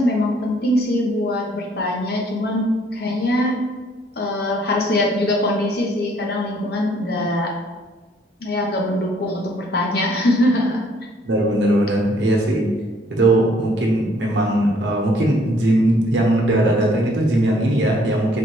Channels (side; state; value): both; normal; correlation 0.63